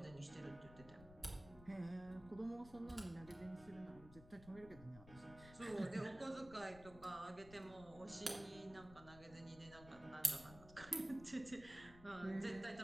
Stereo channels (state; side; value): noise; left; rumble, 16 dB below the sound